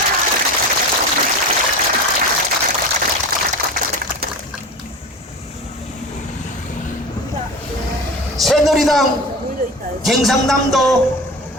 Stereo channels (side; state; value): both; normal; correlation 0.32